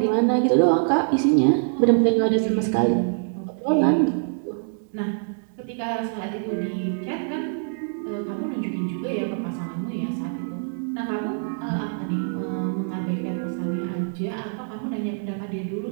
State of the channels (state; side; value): silent; left; digital silence